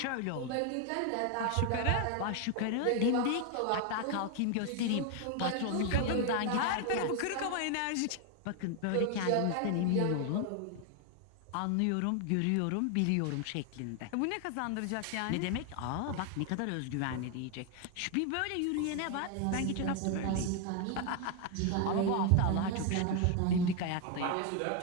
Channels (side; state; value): both; different; correlation 0.01